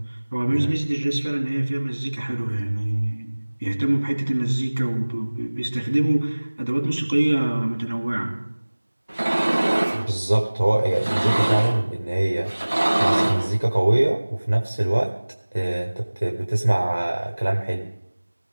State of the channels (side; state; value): both; inverted; correlation -1.00